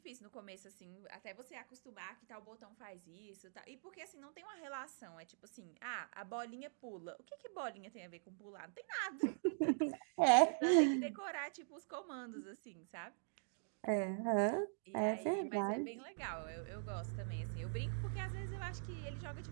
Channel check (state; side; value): silent; left; digital silence